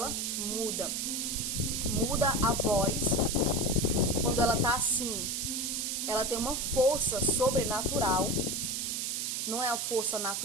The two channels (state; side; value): noise; right; hiss, 1 dB below the sound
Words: muda. Muda a voz. Quando ela está assim, ela tem uma força sobrenatural. Não é a força